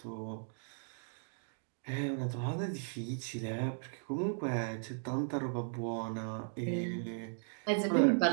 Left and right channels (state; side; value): silent; left; digital silence